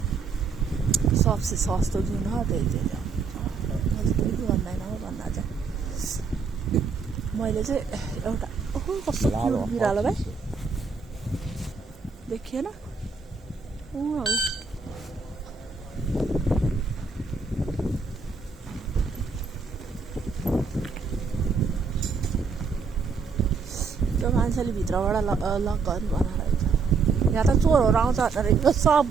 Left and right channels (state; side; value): quieter; left; 4.9 dB